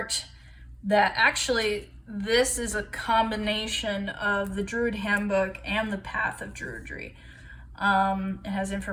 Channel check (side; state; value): both; identical; correlation 1.00